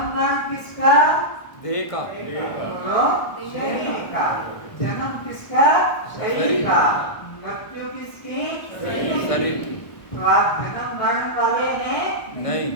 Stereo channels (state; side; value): late; right; 1.2 ms